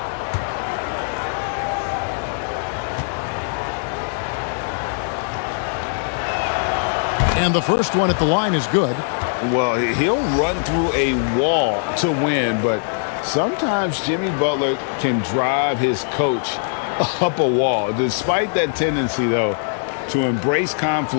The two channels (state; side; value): silent; right; 62 dB below the other